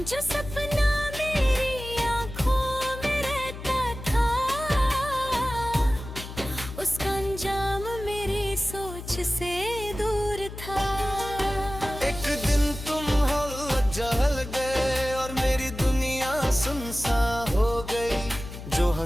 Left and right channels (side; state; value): left; noise; hum, 11 dB below the sound